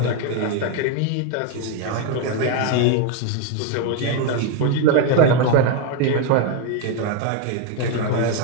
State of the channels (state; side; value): different; both; correlation 0.02